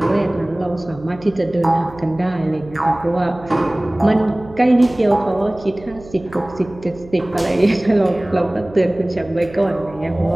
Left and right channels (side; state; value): right; noise; hum, 20 dB below the sound